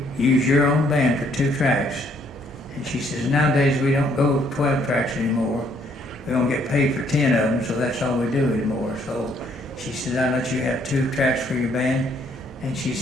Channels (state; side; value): normal; both; correlation 0.67